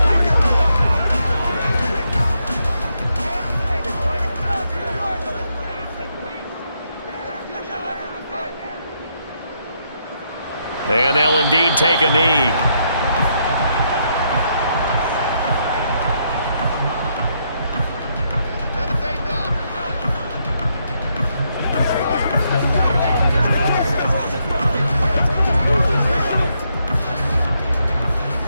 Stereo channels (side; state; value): both; inverted; correlation -0.77